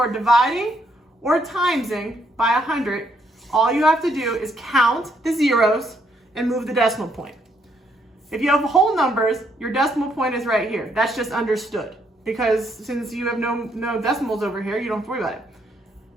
dividing or timesing by 100, all you have to do is count the zeros and move the decimal point. If you have whole numbers, your decimal point is right here. That's just understood. Because since you have no decimals over here, you don't have to worry about it.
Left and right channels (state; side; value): normal; both; correlation 0.73